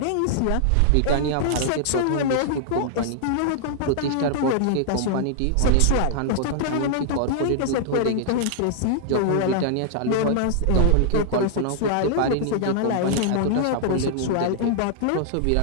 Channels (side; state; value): both; different; correlation -0.01